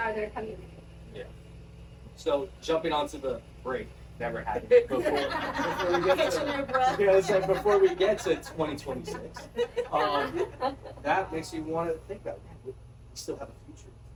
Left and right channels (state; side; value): identical; both; correlation 1.00